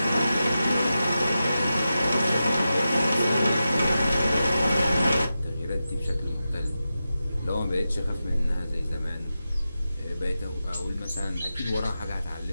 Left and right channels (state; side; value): inverted; both; correlation -0.92